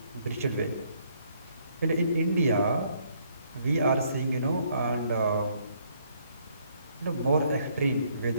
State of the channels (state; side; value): inverted; both; correlation -0.68